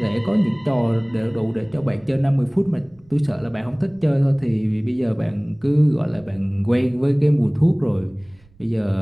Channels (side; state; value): right; noise; rumble, 28 dB below the sound